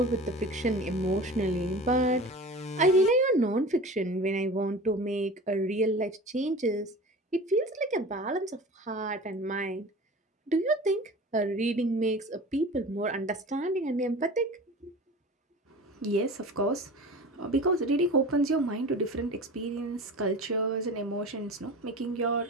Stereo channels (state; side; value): normal; both; correlation 0.37